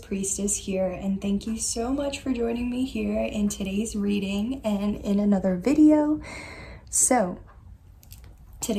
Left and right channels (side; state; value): both; identical; correlation 1.00